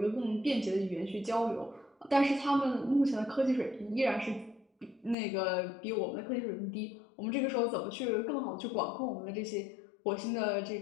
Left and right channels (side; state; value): right; drops out; at 5.2 s